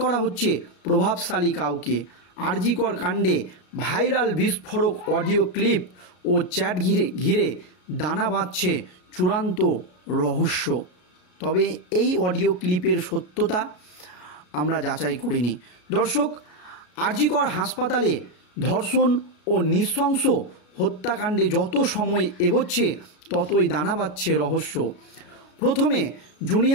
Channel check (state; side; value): late; right; 33 ms